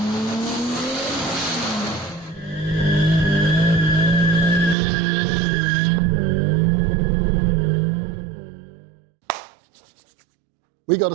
We got a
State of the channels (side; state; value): left; drops out; at 4.8 s